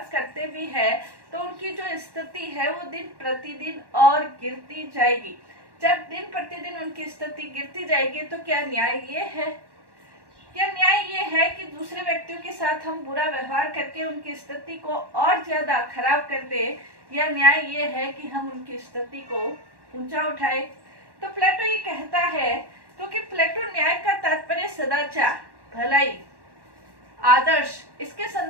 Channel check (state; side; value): late; left; 1.1 ms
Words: करते भी है तो उनकी जो स्थिति है वो दिन प्रतिदिन और गिरती जाएगी। जब दिन प्रतिदिन उनकी स्थिति गिरती जाएगी तो क्या न्याय ये है? क्या न्याय ये है कि दूसरे व्यक्तियों के साथ हम बुरा व्यवहार करके उनकी स्थिति को और ज्यादा खराब कर दे, या न्याय ये है कि हम उनकी स्थिति को ऊंचा उठाए? तो प्लेटो ये कहता है, क्योंकि प्लेटो न्याय का तात्पर्य सदाचार, भलाई, आदर्श इसके